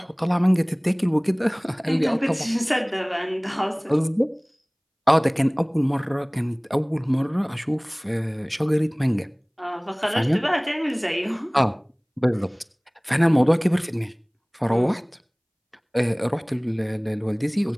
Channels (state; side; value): identical; both; correlation 1.00